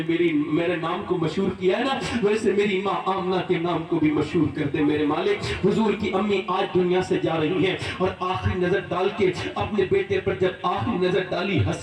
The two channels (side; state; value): both; identical; correlation 1.00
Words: میرے نام کو مشہور کیا ہے نا، ویسے میری ماں آمنہ کے نام کو بھی مشہور کر دے میرے مالک۔ حضور کی امی آج دنیا سے جا رہی ہیں اور آخری نظر ڈال کے اپنے بیٹے پر جب آخری نظر ڈالی،